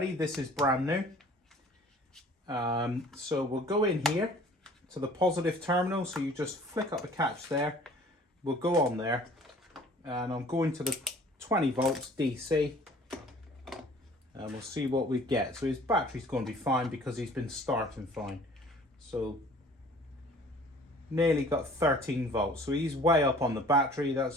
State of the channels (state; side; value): normal; both; correlation 0.50